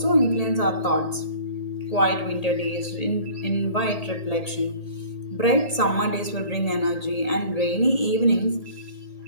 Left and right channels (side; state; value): right; late; 1.8 ms